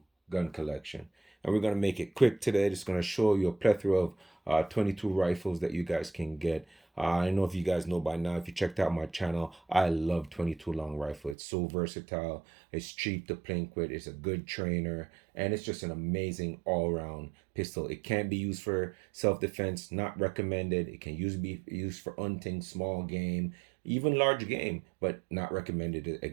gun collection. And we're going to make it quick today. Just going to show you a plethora of 22 rifles that you guys can get. I don't know if you guys know by now, if you checked out my channel, I love 22 long rifle. It's so versatile. It's cheap to plink with. It's a good trainer. And it's just an amazing all-around pistol. It can be used for self-defense, not recommended. It can be used for hunting, small game, even large game, but not recommended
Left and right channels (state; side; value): drops out; left; at 11.4 s